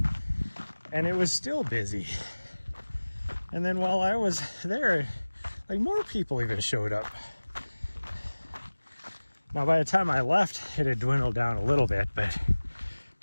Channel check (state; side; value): inverted; both; correlation -1.00